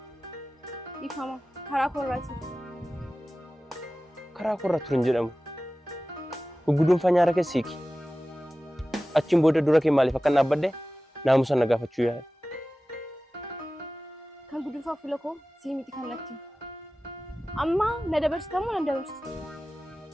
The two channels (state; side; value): normal; both; correlation 0.96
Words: Ifama karaa korraati. Karaa korra turin jedhamu. Gugguduunfaa nyaara keessiiki. Achiin booda dura kee maaliif akka naabbadde naamusa na gaafachuu yaada. Kan gudunfaa fuula koo sii miti kan natti. Amma na dabarstamu na dabarstu.